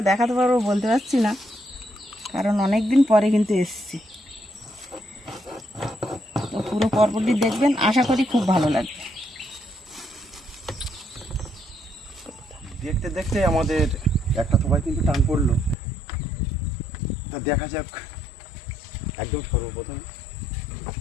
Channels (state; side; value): drops out; right; at 15.8 s